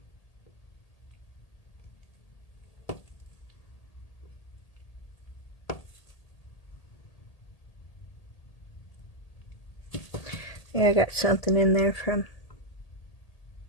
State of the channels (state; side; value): late; right; 1.8 ms